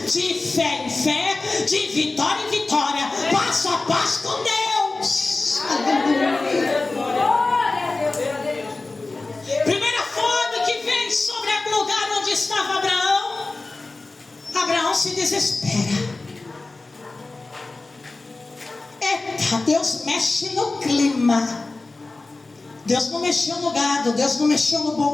de fé em fé, de vitória em vitória, passo a passo com Deus. Aleluia. Primeira fome que vem sobre o lugar onde estava Abraão. Abraão se desespera. Eita, Deus mexe no clima. Deus não mexeu no gado, Deus não mexeu no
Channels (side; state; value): right; quieter; 3.4 dB